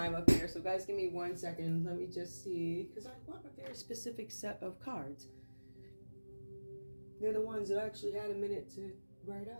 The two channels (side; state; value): both; inverted; correlation -1.00